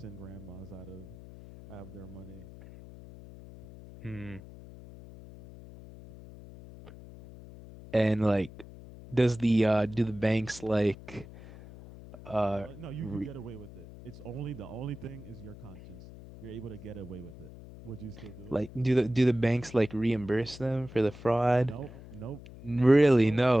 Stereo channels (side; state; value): left; noise; hum, 16 dB below the sound